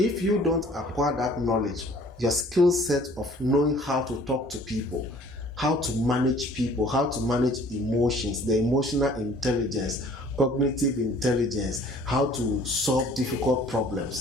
you don't acquire that knowledge, your skill set of knowing how to talk to people, how to manage people, how to manage emotions, the emotional intelligence, cognitive intelligence, how to solve difficult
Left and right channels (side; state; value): both; normal; correlation 0.53